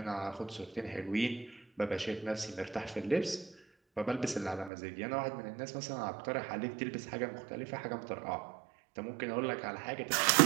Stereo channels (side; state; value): left; drops out; at 4.7 s